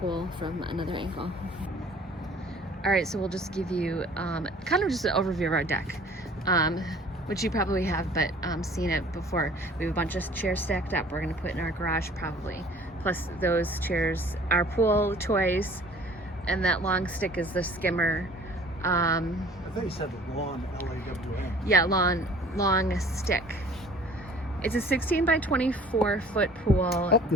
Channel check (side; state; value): both; normal; correlation 0.50